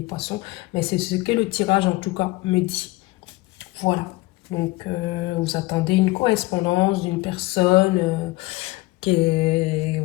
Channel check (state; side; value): quieter; right; 21.0 dB